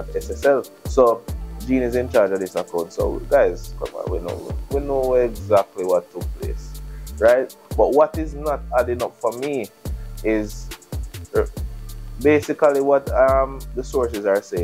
SSL. So Jean is in charge of this account. So guys, come on, we know exactly what took place, right? But what is not adding up for me is basically what the sources are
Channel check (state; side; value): identical; both; correlation 1.00